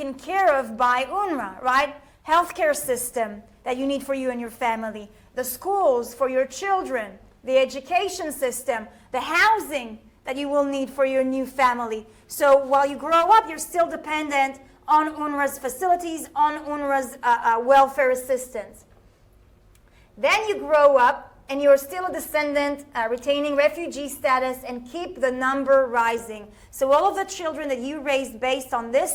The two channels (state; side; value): identical; both; correlation 1.00